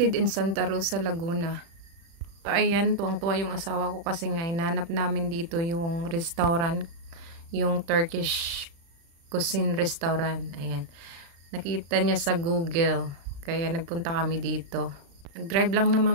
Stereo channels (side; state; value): left; late; 36 ms